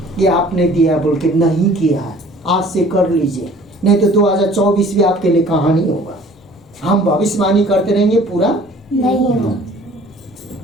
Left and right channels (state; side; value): normal; both; correlation 0.51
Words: ये आपने दिया बोल के नहीं किया। आज से कर लीजिए, नहीं तो 2024 भी आपके लिए कहानी होगा। हम भविष्यवाणी करते रहेंगे, पूरा नहीं